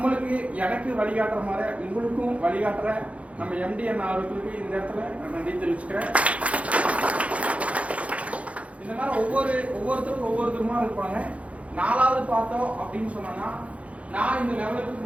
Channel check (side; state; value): left; late; 0.064 ms